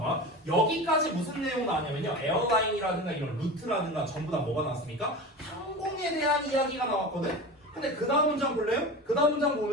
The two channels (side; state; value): both; normal; correlation 0.30